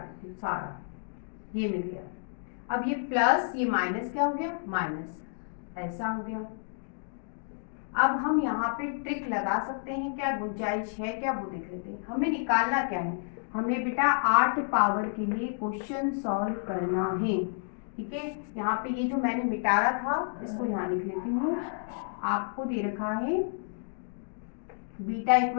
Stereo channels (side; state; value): right; silent; digital silence